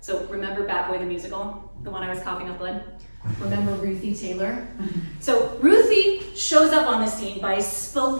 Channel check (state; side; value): inverted; both; correlation -1.00